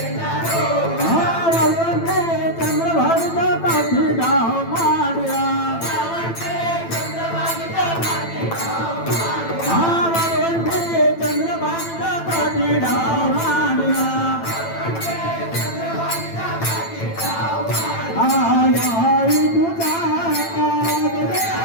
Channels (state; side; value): late; right; 9.0 ms